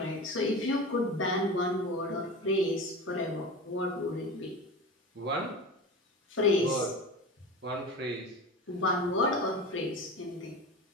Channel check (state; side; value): normal; both; correlation 0.30